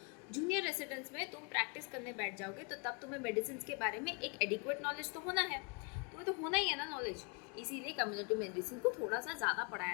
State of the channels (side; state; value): right; quieter; 34.9 dB